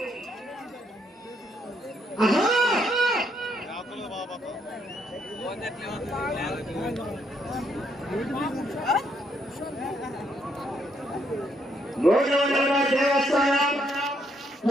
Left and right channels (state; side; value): normal; both; correlation 0.73